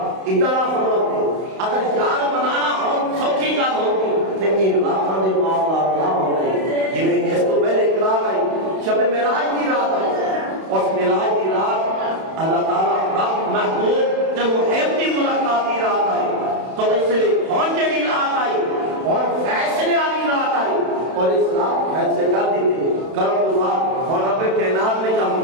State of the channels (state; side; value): late; left; 31 ms